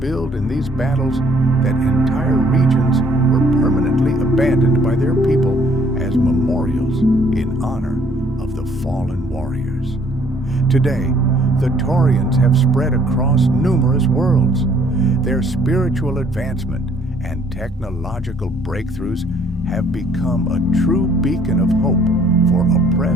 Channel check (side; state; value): both; normal; correlation 0.62